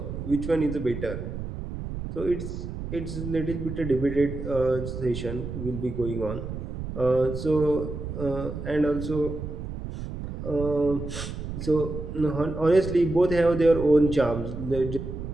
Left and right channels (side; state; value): right; noise; rumble, 7 dB below the sound